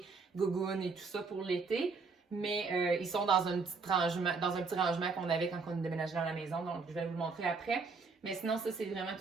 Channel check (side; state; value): left; quieter; 4.5 dB